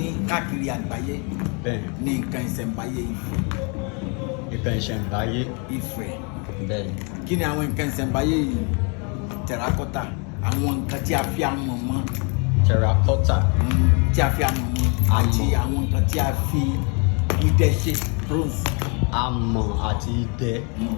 káàkiri àgbáyé ní nǹkan ìṣẹ̀ǹbáyé Ifẹ̀. Nǹkan ìṣẹ̀ǹbáyé Ifẹ̀. bẹ́ẹ̀. Kí ni àwọn nǹkan ìṣẹ̀ǹbáyé yìí? Terracotta, àwọn nǹkan tí a fi amọ̀ mọ́. Terracotta. Tí a fi amọ̀ mọ́ àti àwọn nǹkan tí a fi idẹ ṣe, bronze. Amọ̀ àti idẹ.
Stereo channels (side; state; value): right; quieter; 34.8 dB